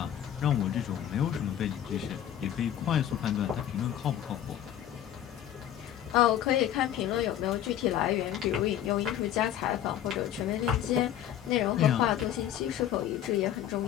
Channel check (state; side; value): quieter; right; 10.9 dB